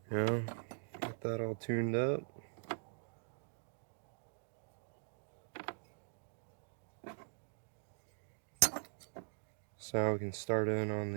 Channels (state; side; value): silent; left; digital silence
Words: Yeah, got that all tuned up. So now we can start in on